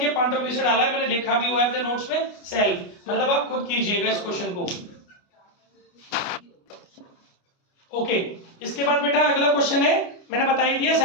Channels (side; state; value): right; late; 29 ms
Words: पॉइंट ऑफ व्यू से डाला है, मैंने लिखा भी हुआ है अपने नोट्स में सेल्फ, मतलब आप खुद कीजिएगा इस क्वेश्चन को। ओके, इसके बाद बेटा अगला क्वेश्चन है, मैंने बता ही दिया